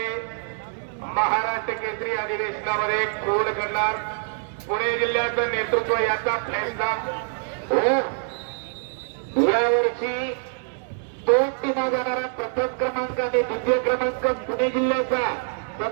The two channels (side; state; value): left; silent; 62 dB below the other